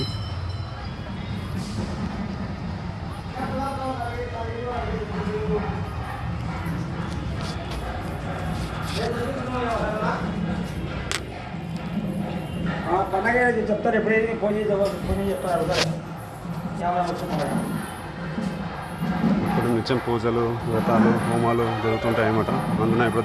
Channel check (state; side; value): identical; both; correlation 1.00